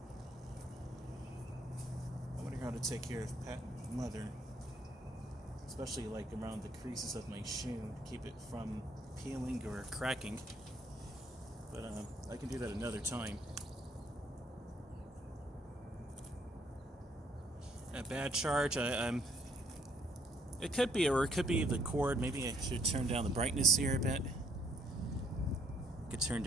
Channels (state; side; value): normal; both; correlation 0.66